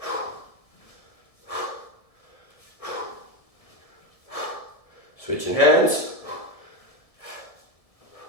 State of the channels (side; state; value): right; late; 1.7 ms